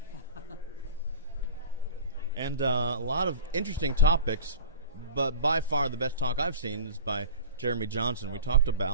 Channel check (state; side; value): inverted; both; correlation -0.34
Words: And a lot of interesting topics, but by far the best talk I've seen is by Jeremy Johnson. We talked